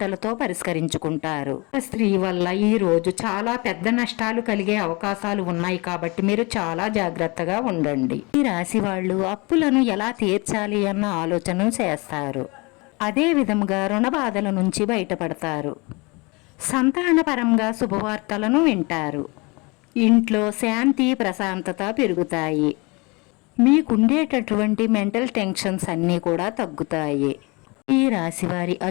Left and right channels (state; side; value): quieter; right; 27.0 dB